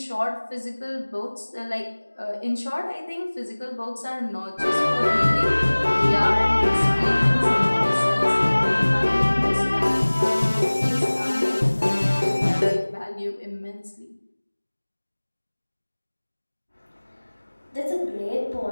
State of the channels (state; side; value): inverted; both; correlation -1.00